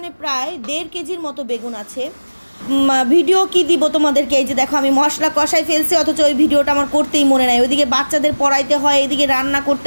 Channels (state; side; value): inverted; both; correlation -1.00